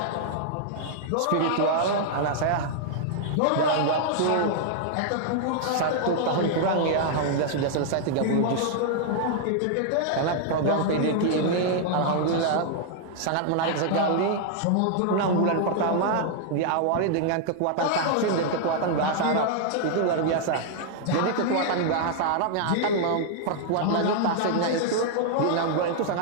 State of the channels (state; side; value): different; both; correlation -0.01